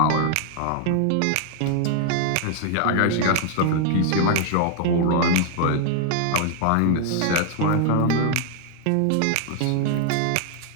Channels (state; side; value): different; both; correlation 0.00